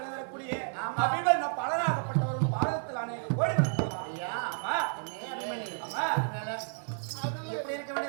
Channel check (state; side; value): silent; left; 57 dB below the other